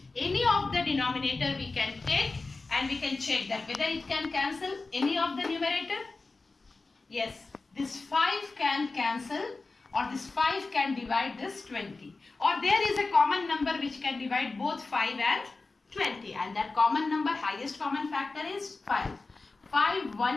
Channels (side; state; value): right; quieter; 3.7 dB